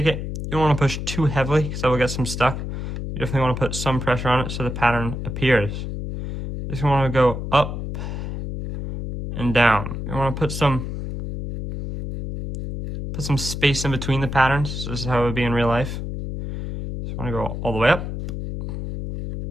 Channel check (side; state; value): left; noise; hum, 5 dB below the sound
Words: it. You don't want to push too heavily because that will get some stuck. You definitely want to put some pressure on it so the pattern appears. You just want to go up and down. You want to put some put some space in between the patterns. So this is how it would be in real life. Just want to go all the way up